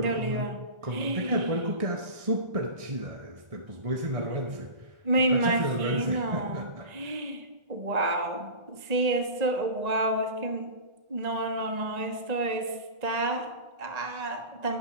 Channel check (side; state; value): left; late; 1.8 ms